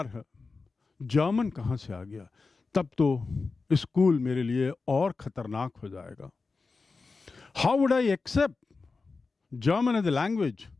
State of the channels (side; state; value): right; quieter; 4.2 dB